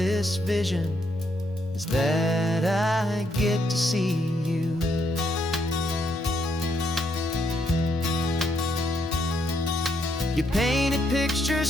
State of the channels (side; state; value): both; normal; correlation 0.75